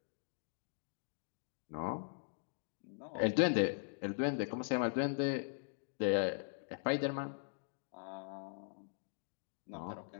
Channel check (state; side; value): silent; right; digital silence